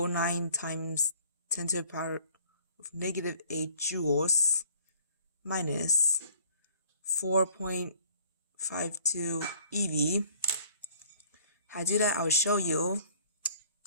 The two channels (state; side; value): inverted; both; correlation -0.55